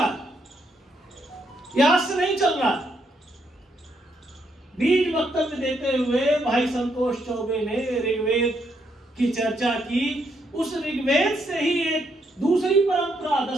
आज से नहीं चल रहा। बीज वक्तव्य देते हुए भाई संतोष चौबे ने ऋग्वेद की चर्चा की। उस ऋग्वेद से ही एक दूसरी परंपरा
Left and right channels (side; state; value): both; normal; correlation 0.76